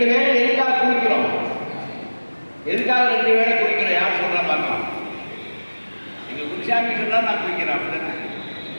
வேளை எதுக்காக குளிக்கிறோம்? எதுக்காக 2 வேளை குளிக்கிறோம்? யார் சொல்றா பார்க்கலாம். எங்க குருசாமி சொன்னா நான் குளிக்கிறேன். அப்படித்தானே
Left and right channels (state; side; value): inverted; both; correlation -1.00